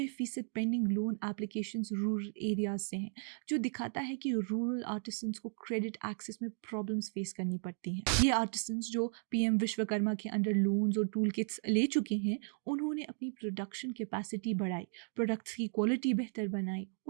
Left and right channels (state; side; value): silent; left; digital silence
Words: pending loan applications rural areas से हैं, जो दिखाता है कि रूरल आर्टिसंस को क्रेडिट एक्सेस में प्रॉब्लम्स फेस करनी पड़ती हैं। ये आर्टिसंस जो पीएम विश्वकर्मा के अंडर लोन्स और टूल किट्स ले चुके हैं, उन्होंने अपनी प्रोडक्शन कैपेसिटी बढ़ाई, प्रोडक्ट्स की क्वालिटी बेहतर बनाई